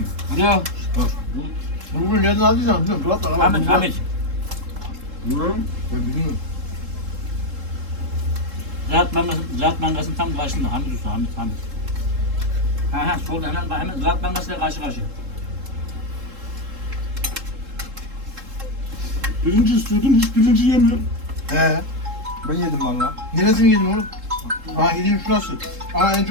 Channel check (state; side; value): late; left; 3.7 ms